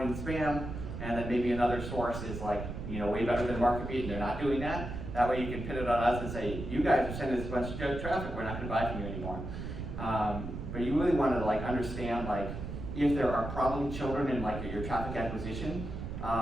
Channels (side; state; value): right; noise; rumble, 7 dB below the sound